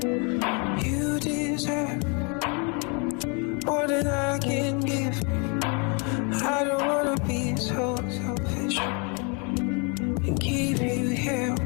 You deserve more than I can give. I don't wanna be so selfish and keep you here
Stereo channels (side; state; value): right; quieter; 34.6 dB